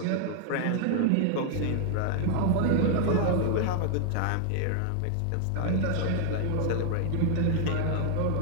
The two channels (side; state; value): both; different; correlation 0.00